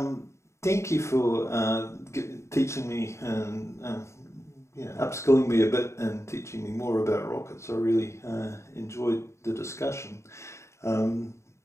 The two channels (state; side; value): late; right; 0.14 ms